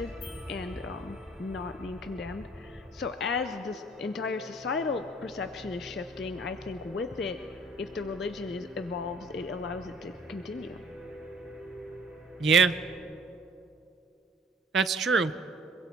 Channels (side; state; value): both; normal; correlation 0.54